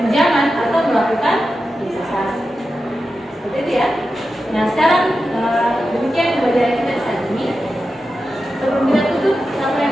atau melakukan investasi. Seperti itu ya. Nah sekarang demikian pembelajaran kita saat ini.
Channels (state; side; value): normal; both; correlation 0.91